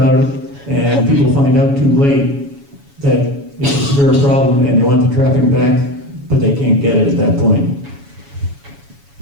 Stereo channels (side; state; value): left; late; 7.1 ms